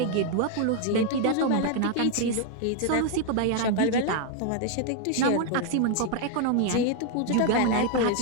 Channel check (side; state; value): both; different; correlation 0.00